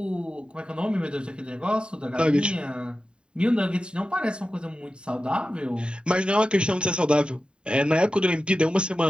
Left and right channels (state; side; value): late; left; 0.051 ms